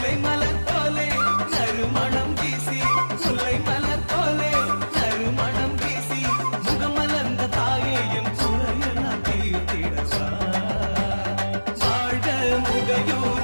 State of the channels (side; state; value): both; inverted; correlation -1.00